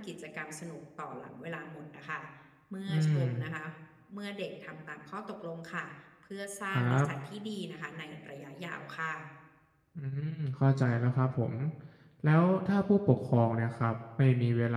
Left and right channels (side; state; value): both; identical; correlation 1.00